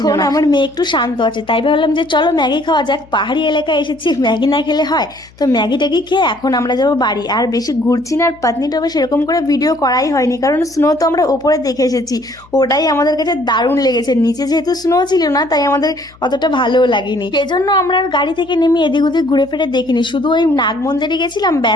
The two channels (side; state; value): left; noise; hum, 26 dB below the sound